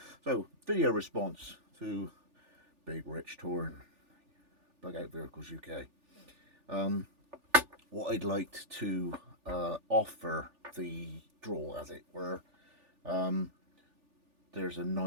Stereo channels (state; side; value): late; left; 3.4 ms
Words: So, video response to Big Rich touring Pancake Verticals UK. What I'd like to offer the draw, as it were, there's a